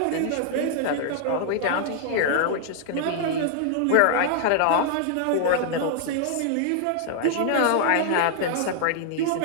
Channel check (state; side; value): different; both; correlation -0.01